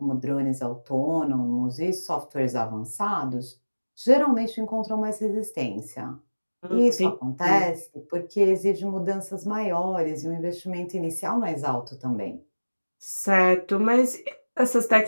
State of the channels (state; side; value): inverted; both; correlation -1.00